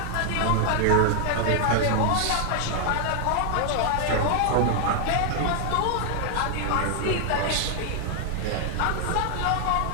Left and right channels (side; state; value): both; different; correlation 0.00